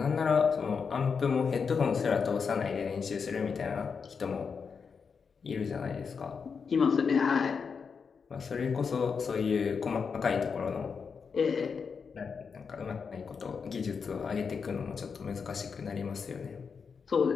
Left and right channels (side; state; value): right; quieter; 5.8 dB